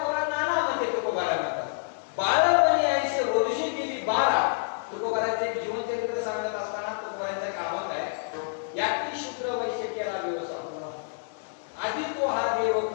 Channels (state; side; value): silent; right; digital silence